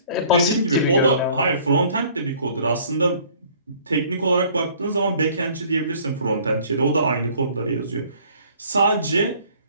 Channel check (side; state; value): both; inverted; correlation -0.55